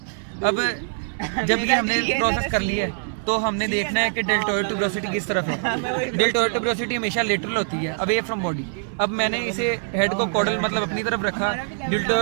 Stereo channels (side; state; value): left; silent; digital silence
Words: अब जब ये हमने प्रोसेस कर लिया है तो हमने देखना है कि डेल्टोइड ट्यूबरोसिटी किस तरफ है। डेल्टोइड ट्यूबरोसिटी हमेशा लेटरल होती है, अवे फ्रॉम बॉडी। अब मैंने इसे हेड को कॉर्डल मतलब अपनी तरफ रखा,